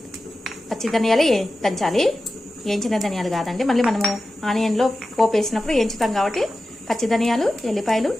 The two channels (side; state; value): both; normal; correlation 0.93